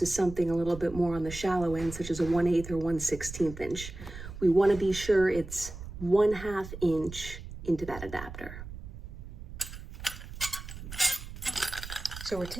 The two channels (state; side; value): noise; right; rumble, 11 dB below the sound